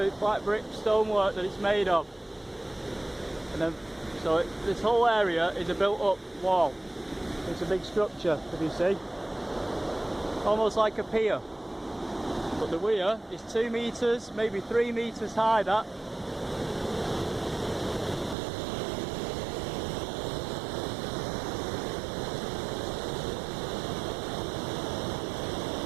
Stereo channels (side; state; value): left; drops out; at 18.4 s